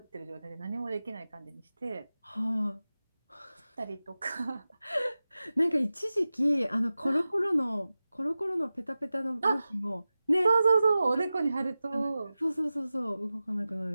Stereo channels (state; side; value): inverted; both; correlation -0.95